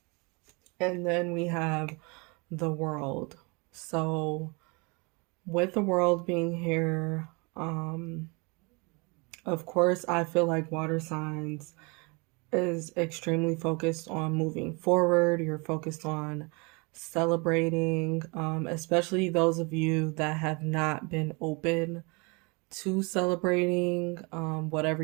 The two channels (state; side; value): quieter; left; 29.6 dB